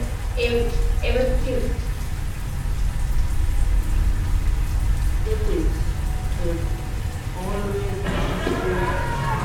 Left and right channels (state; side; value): identical; both; correlation 1.00